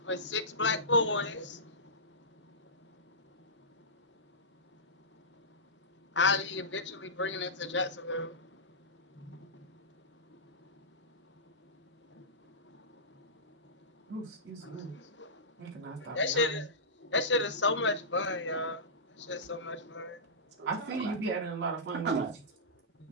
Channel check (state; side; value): normal; both; correlation -0.17